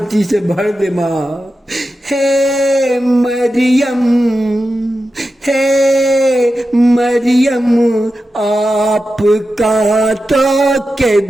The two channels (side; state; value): both; normal; correlation 0.91